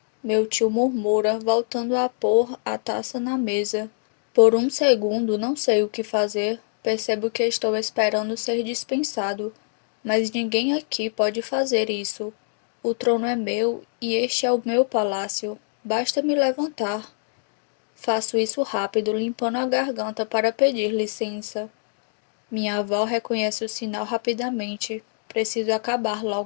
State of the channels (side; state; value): right; silent; digital silence